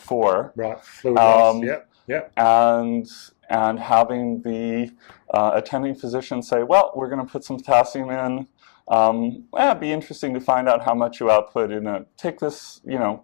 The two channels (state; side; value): silent; right; digital silence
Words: Right, fluid loss, yep. And having the attending physician say, well, we're going to put some potassium in. It'd be interesting to find out how much you output take this,